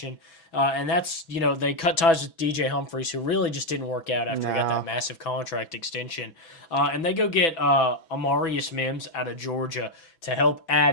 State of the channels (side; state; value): right; late; 6.0 ms